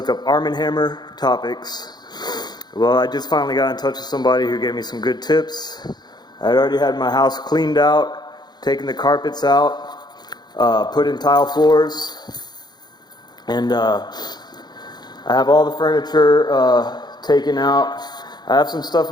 up Arm & Hammer topics. Well, I just finally got in touch with somebody who gave me some good tips. I had already had my house cleaned out, taken the carpets out, put in tile floors, and I have all the furniture taken out. I have some stuff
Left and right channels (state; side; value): late; right; 0.20 ms